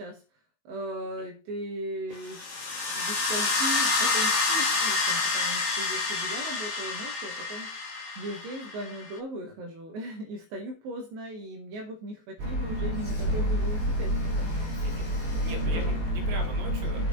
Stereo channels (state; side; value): late; left; 19 ms